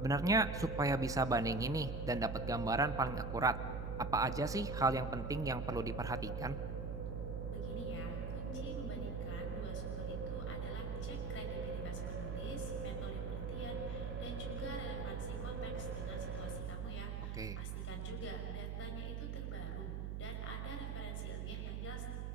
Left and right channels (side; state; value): right; noise; hum, 3 dB below the sound